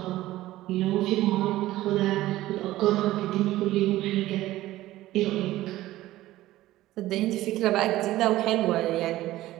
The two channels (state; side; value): quieter; left; 15.9 dB